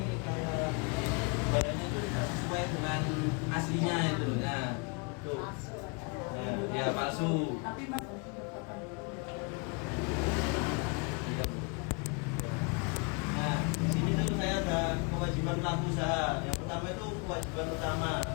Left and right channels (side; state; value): right; quieter; 33.6 dB